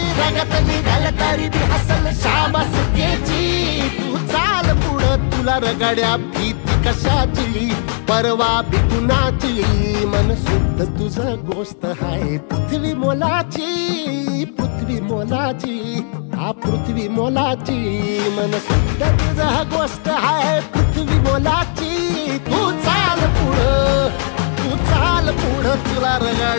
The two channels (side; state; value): right; silent; 57 dB below the other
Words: रगत निघल तरी बी हसल शाबास त्याची. तू चाल पुढं तुला रगड्या भीती कशाची, परवा बी कुणाची, मन शुद्ध तुझं गोष्ट हाय पृथ्वी मोलाची, पृथ्वी मोलाची, हा पृथ्वी मोलाची, मन शुद्ध तुझं गोष्ट हाय पृथ्वी मोलाची. तू चाल पुढं, तू चाल पुढं तुला